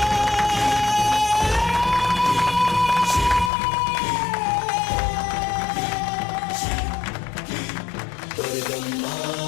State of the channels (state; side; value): drops out; right; at 3.5 s